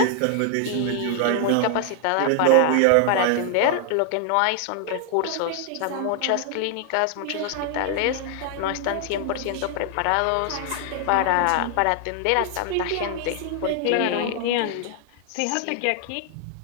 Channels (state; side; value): different; both; correlation 0.00